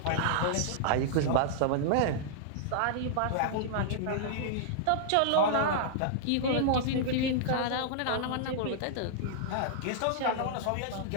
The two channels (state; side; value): different; both; correlation -0.01